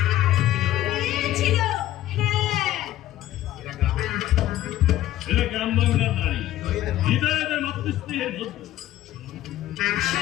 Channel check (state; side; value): quieter; right; 13.9 dB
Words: মেয়ে ছিল। হ্যাঁ, এরা গ্রাম বাংলার নারী, হৃদয়ের মাতৃস্নেহের মধ্যে।